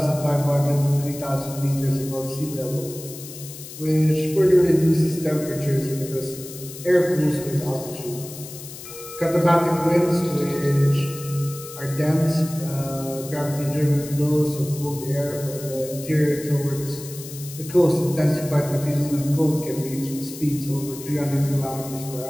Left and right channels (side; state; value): left; noise; hiss, 13 dB below the sound